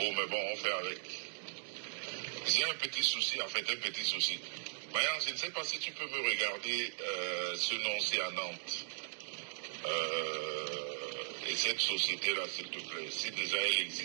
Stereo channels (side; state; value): left; silent; digital silence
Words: mais bon, on fait avec. J'ai un petit souci, en fait, un petit souci. Marion, je ne sais pas si tu peux me regarder ce nom-ci à Nantes. Et cette société-là, s'il te plaît, si déjà elle